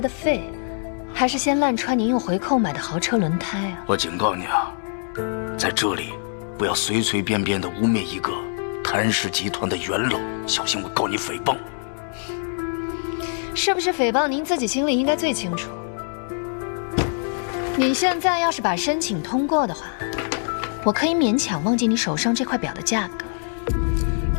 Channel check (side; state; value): right; silent; 63 dB below the other